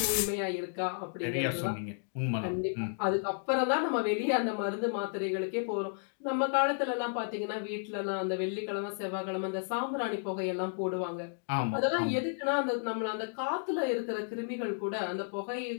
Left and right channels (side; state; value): right; silent; digital silence